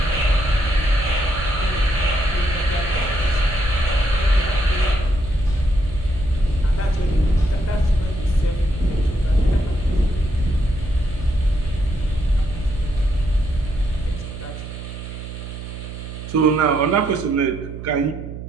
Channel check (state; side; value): noise; right; hum, 10 dB below the sound